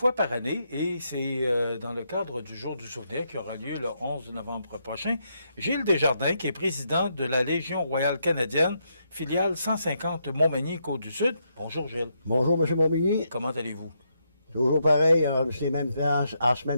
par année et c'est dans le cadre du Jour du souvenir qui aura lieu le 11 novembre prochain. Gilles Desjardins, qui est président de la Légion royale canadienne, filiale 150 Montmagny-Côte-du-Sud. Bonjour Gilles. Bonjour M. Montmagny. Comment allez-vous? Toujours pareil, c'est même à ce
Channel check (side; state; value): both; inverted; correlation -0.79